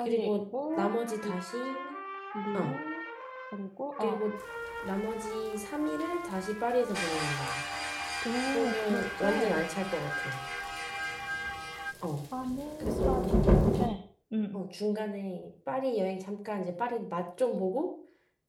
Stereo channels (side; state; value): both; identical; correlation 1.00